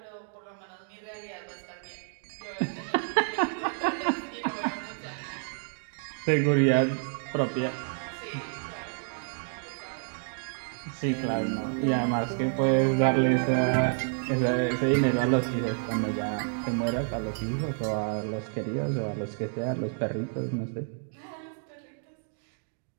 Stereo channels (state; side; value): silent; left; 58 dB below the other